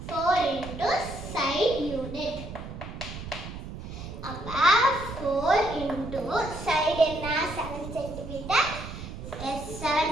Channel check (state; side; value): noise; right; rumble, 10 dB below the sound